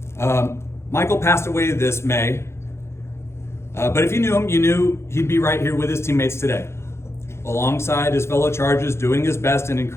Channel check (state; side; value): late; right; 0.13 ms